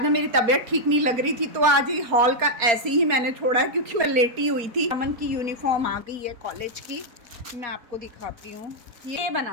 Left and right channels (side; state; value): left; late; 4.3 ms